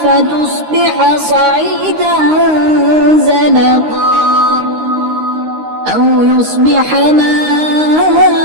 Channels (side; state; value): left; late; 13 ms